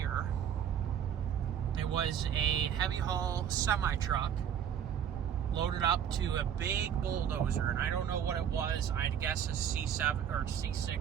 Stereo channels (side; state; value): left; quieter; 8.9 dB